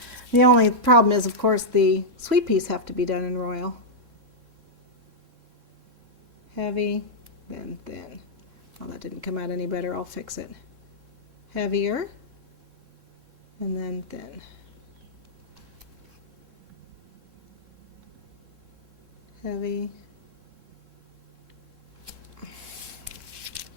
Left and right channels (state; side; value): late; left; 3.7 ms